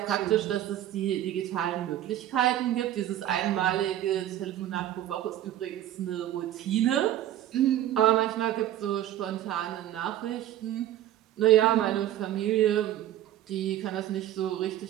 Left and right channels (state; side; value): quieter; left; 12.6 dB